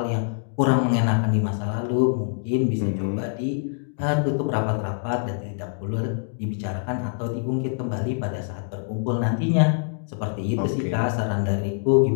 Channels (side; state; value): right; silent; digital silence